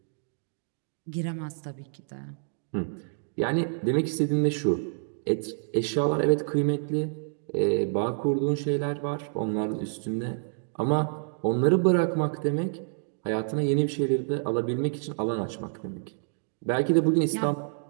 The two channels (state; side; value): silent; left; digital silence